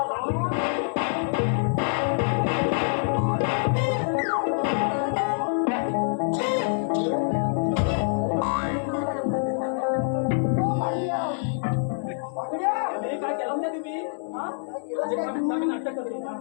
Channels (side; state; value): right; silent; digital silence